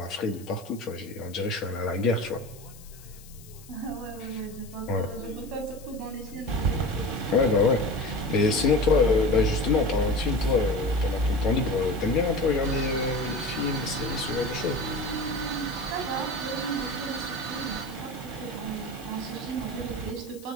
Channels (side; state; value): left; noise; hiss, 21 dB below the sound